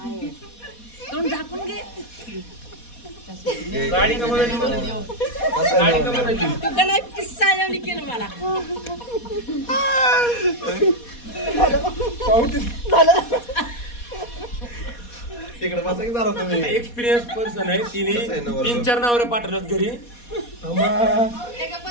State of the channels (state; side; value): late; right; 4.2 ms